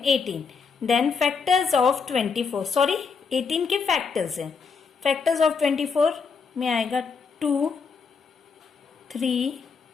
18. Then factors of 24, sorry 18 के फैक्टर्स हैं. फैक्टर्स ऑफ 24 में आएगा 2, 3,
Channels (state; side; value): quieter; right; 5.4 dB